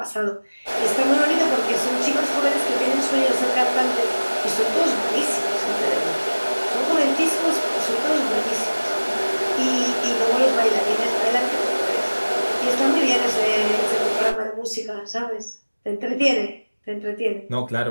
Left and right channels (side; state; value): both; inverted; correlation -1.00